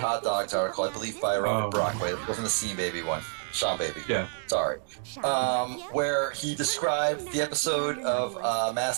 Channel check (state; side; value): silent; left; 59 dB below the other